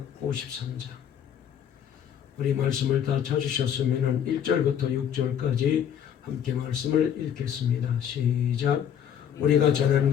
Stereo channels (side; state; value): right; quieter; 8.9 dB